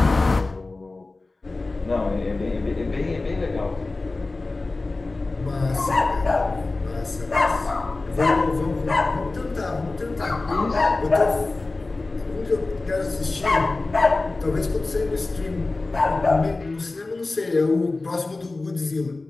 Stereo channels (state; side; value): quieter; right; 3.3 dB